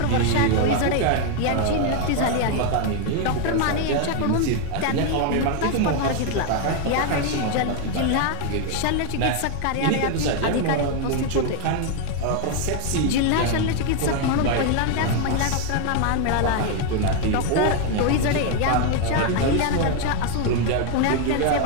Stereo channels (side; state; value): both; different; correlation 0.00